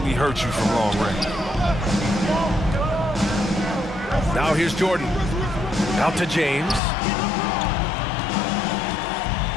hurt you from long range. Now here's Jordan. Out to James.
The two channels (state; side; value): drops out; right; at 6.8 s